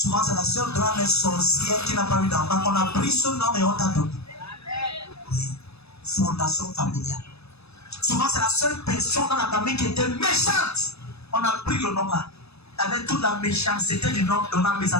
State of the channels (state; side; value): late; right; 0.79 ms